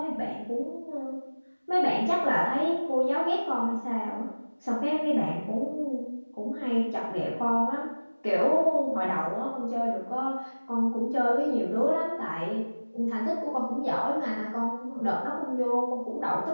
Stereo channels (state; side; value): inverted; both; correlation -1.00